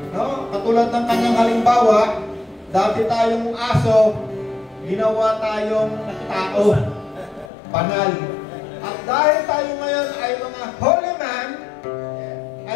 no? Katulad ng kanyang halimbawa, dati tayong aso, ginawa tayong tao, banal. At dahil tayo ngayon ay mga holy man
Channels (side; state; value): right; drops out; at 7.5 s